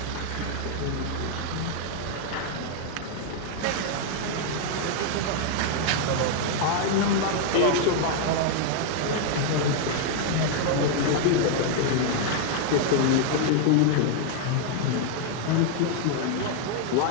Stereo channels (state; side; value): different; both; correlation 0.00